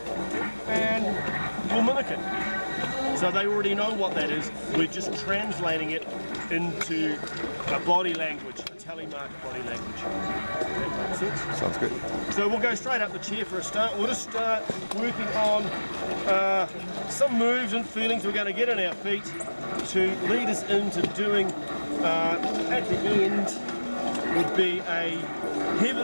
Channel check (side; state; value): both; inverted; correlation -1.00